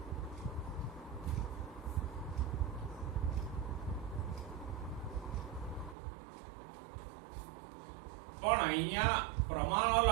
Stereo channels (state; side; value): drops out; left; at 6.0 s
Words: પણ અહીંયા પ્રમાણ